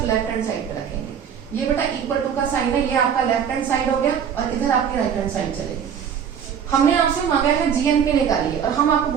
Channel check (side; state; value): left; quieter; 7.9 dB